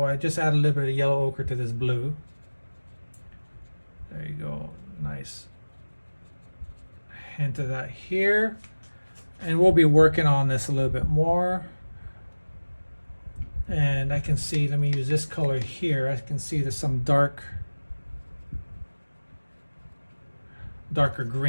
I just add a little bit of yellow ochre to this blue. There you go, nice hint of that here. And we'll be working on this a little bit more. And I can see, let me use this color here. I can see there's some darker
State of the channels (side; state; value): both; inverted; correlation -1.00